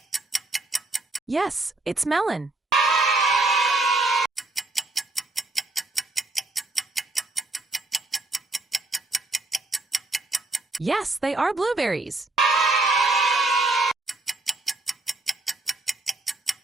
Yes, it's melon. Yes, they are blueberries.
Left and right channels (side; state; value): left; quieter; 3.1 dB